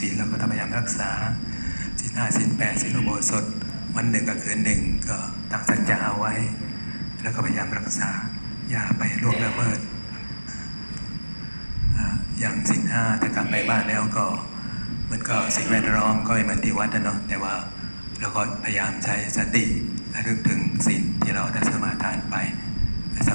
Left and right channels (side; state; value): both; inverted; correlation -1.00